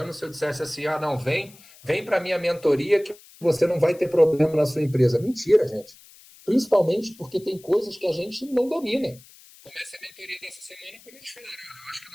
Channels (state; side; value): noise; left; hiss, 23 dB below the sound